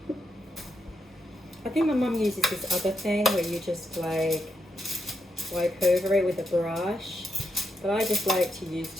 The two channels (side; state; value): both; normal; correlation 0.83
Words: I think my mum uses this other thing where you just like wipe over it with a brush. But I just like to use